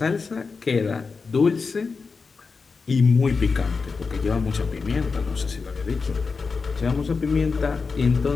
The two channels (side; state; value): right; quieter; 4.7 dB